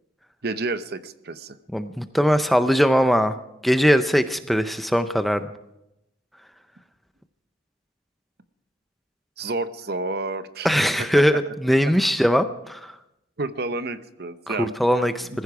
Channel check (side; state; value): both; normal; correlation 0.87